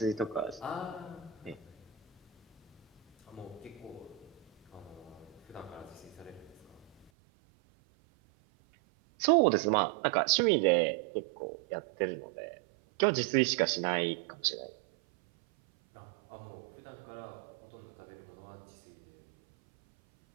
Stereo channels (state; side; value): drops out; left; at 7.1 s